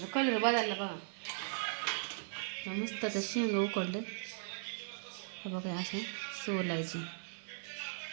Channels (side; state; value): left; silent; 52 dB below the other